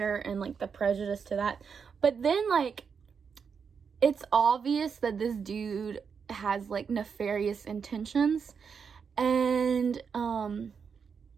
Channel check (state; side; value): quieter; left; 6.2 dB